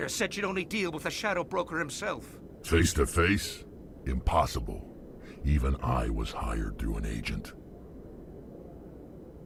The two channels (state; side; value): identical; both; correlation 1.00